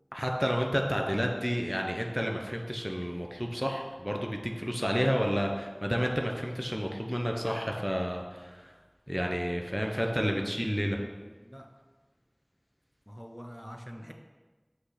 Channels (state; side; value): identical; both; correlation 1.00